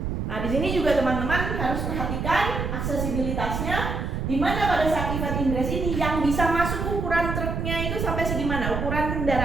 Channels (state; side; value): noise; right; rumble, 2 dB below the sound